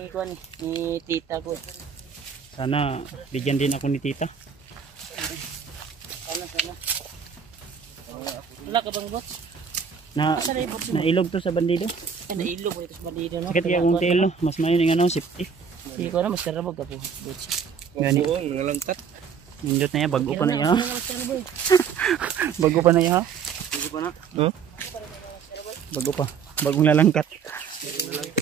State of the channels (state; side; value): quieter; left; 6.6 dB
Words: ni tita ko. Sana bigyan din ako ni tita. Sana. Wala ka bang bots? Nailog to sa bandido. Ay, nailog ito sa bandido, no? Sakit kaya kung telo, mas mayon yung ano, safety. Hindi ko na, mas karabog ka po. Bots. Gani. Oo, nangalangkat. Nindot na yan, bago pa na yan ha. Bago pa na yan ha. Hindi pa na. Bago pa. Bagong lalangkat.